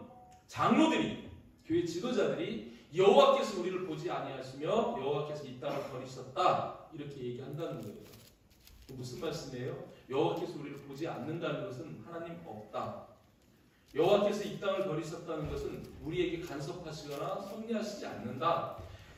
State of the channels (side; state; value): both; identical; correlation 1.00